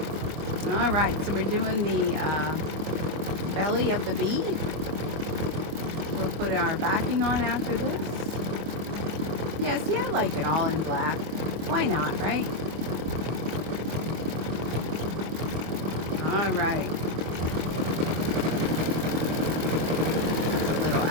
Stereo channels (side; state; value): left; late; 25 ms